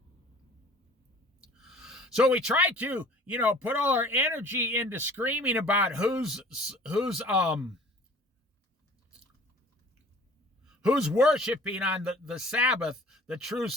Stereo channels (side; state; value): both; normal; correlation 0.49